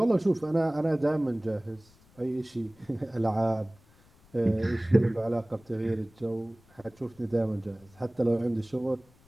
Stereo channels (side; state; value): left; noise; rumble, 29 dB below the sound